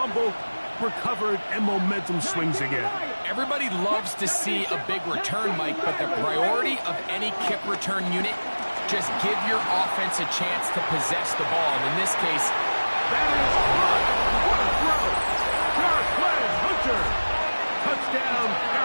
recovered, and momentum swings again. Everybody loves to see a big return, Mike, but the priority of any kick return unit, just give your offense a chance to possess the ball. And in this case, that is good. What a throw. Sharp play, Hunter. Touchdown,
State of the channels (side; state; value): both; inverted; correlation -1.00